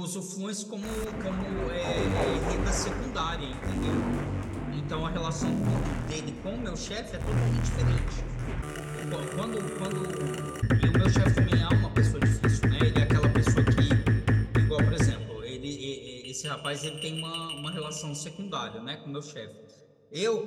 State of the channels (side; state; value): both; identical; correlation 1.00